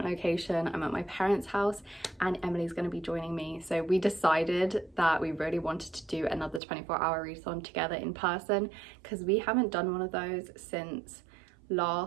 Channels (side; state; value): left; drops out; at 6.6 s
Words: location. I'm at my parents' house and Emily's going to be joining me. So we decided that we really wanted to do another 24-hour readathon together in person because we haven't done one of those since